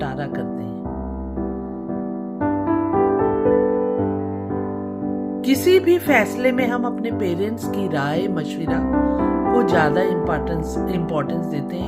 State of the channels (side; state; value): both; identical; correlation 1.00